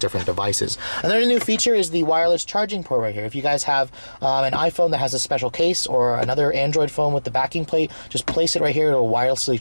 devices. Another new feature is the wireless charging port right here. If you guys have an iPhone that has a special case or another Android phone with the backing plate, just place it right here. It'll wirelessly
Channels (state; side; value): inverted; both; correlation -1.00